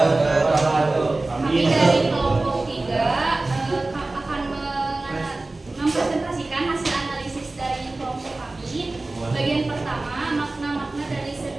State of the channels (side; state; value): left; quieter; 3.1 dB